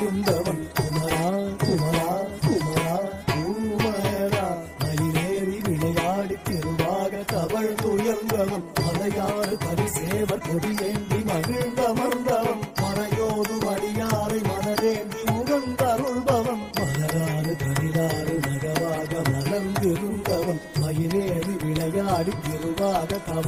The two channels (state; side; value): identical; both; correlation 1.00